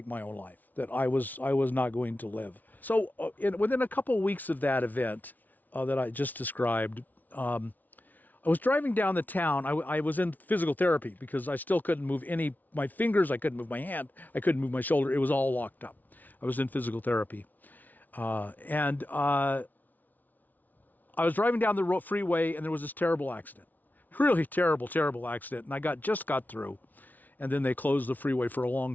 my own life, that I was not going to live. So within a couple of weeks of that event that I just described, I was driving down the town. I was in physical therapy because I still couldn't move my fingers. I couldn't move my hand. I couldn't move my shoulder. It was all locked up. I was in physical therapy. And I was driving down the freeway, and there was this terrible accident. Really terrible, terrible accident. And I just got through. And then they closed the freeway for a long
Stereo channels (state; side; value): late; right; 0.080 ms